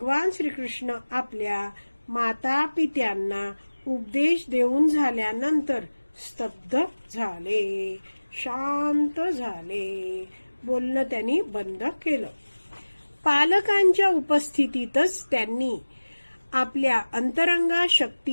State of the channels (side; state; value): both; inverted; correlation -1.00